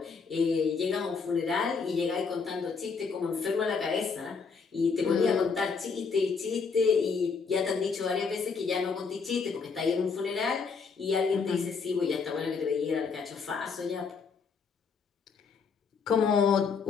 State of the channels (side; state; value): right; quieter; 5.3 dB